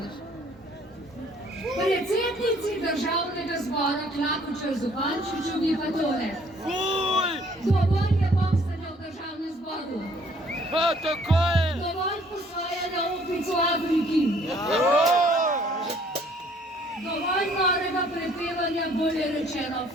Predsednici državnega zbora Klakočar Zupančiču pa tole. Dovolj je boksanja v državnem zboru. Dovolj posvajanja opic v Afriki. Dovolj norega prepevanja, bolje rečeno,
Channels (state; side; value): normal; both; correlation 0.60